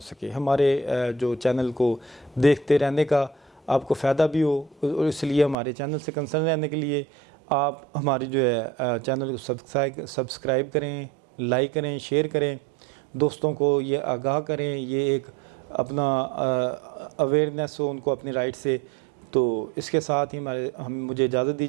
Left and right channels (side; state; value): left; drops out; at 5.6 s